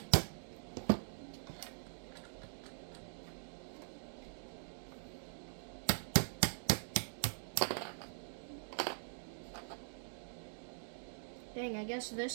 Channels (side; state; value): left; silent; digital silence